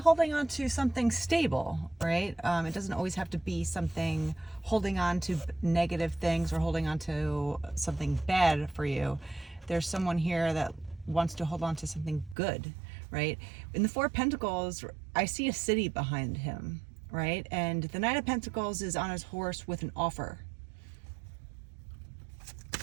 on to something stable, right? It doesn't always have to be something holding on to negative things or holding on to something bad for you. There's someone here that wants to hold on to something good, right? In the Four of Pentacles, I see a city behind him, right? And the Knight of Pentacles is on his horse with an offer.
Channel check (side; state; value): left; drops out; at 12.4 s